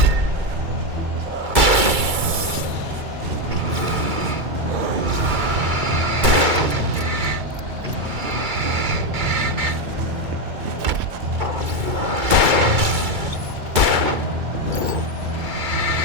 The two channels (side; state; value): left; late; 2.3 ms